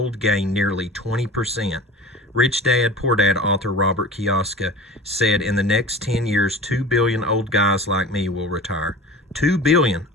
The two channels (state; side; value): normal; both; correlation 0.37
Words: gained nearly 20%. Rich Dad, Poor Dad author Robert Kiyosaki said in the next 10 years, 2 billion old guys like me will retire. 2 billion